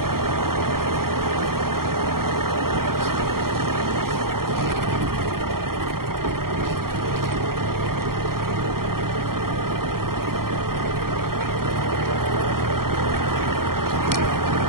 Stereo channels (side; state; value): left; late; 0.93 ms